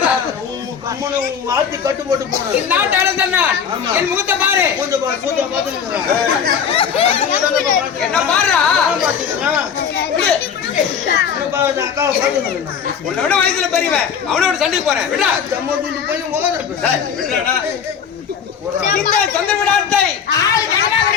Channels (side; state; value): right; quieter; 7.3 dB